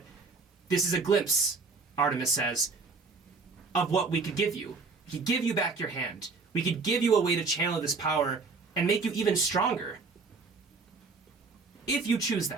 this is a glimpse, Artemis says, of what we could give you. We could give you back your hand. We could give you a way to channel this power and make you even stronger. If you choose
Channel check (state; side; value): quieter; left; 4.3 dB